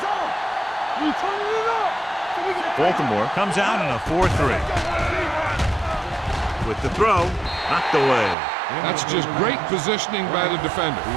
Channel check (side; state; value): left; drops out; at 8.3 s